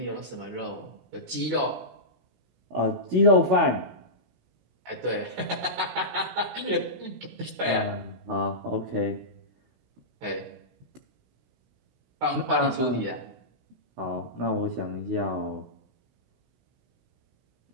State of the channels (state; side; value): late; left; 16 ms